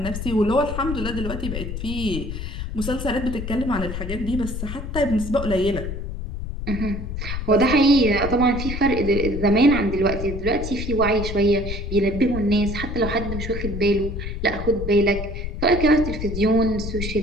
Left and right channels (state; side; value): noise; left; rumble, 6 dB below the sound